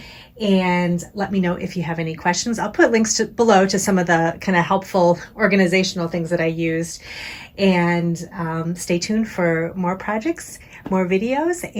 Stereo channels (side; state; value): both; identical; correlation 1.00